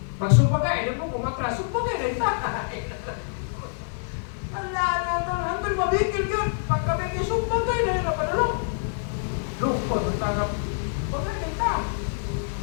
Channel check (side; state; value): right; silent; digital silence